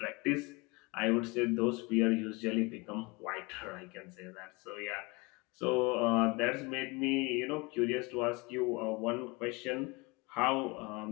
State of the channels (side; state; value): right; quieter; 26.6 dB